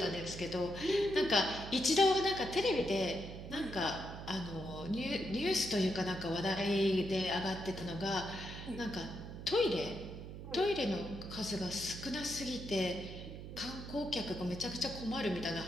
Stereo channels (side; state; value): right; noise; hum, 10 dB below the sound